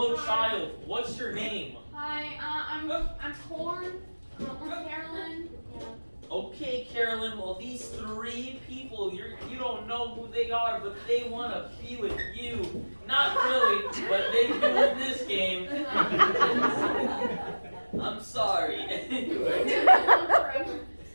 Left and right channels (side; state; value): both; inverted; correlation -1.00